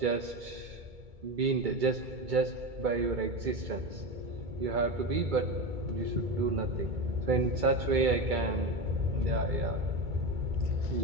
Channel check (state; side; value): late; left; 2.2 ms